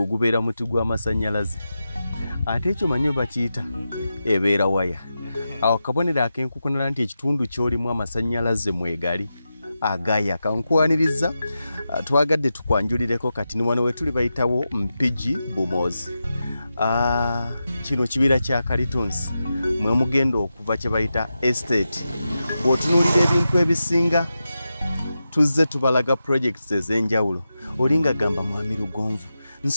gubeera muti gw'amasannyalaze. Ate ekyo omanyi bwe bakiyita ebeera waya. Awo kabonero ak'enkukunala nti ekitundu ky'olimu amasannyalaze mwegali agaya. Kankwaniriza twagadde tukwanjulireko kati ni wano we tuli bayitawo Mpigi Bumozi. Kino kibira kya Kalitunsi mwe mugenda okuva kye bayita estate. Bw'otunuulira ebintu ebisinga tuzze tubalaga projects ez'enjawulo. Olinga gamba Mwami Lugonvu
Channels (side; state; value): both; inverted; correlation -0.90